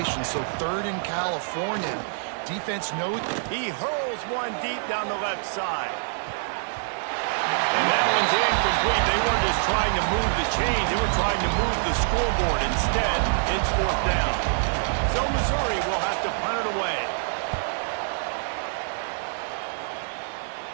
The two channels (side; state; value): left; silent; digital silence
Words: so 3rd in California. Defense knows. He hurls one deep down the left side. And that one's incomplete. They weren't just trying to move the chains. They were trying to move the scoreboard. Instead, it's 4th down. So Missouri will have to punt it away.